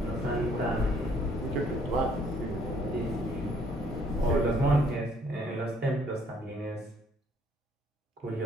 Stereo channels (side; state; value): both; normal; correlation 0.64